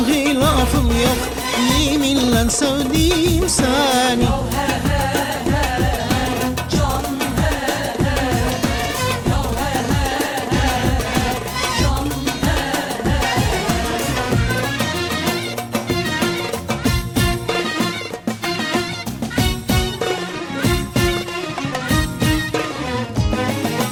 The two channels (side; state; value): both; identical; correlation 1.00